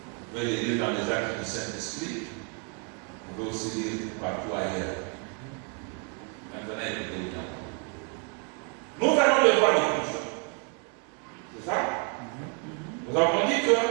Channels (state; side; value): quieter; left; 35.7 dB